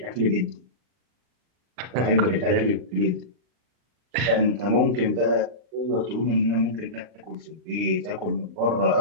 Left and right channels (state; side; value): late; left; 40 ms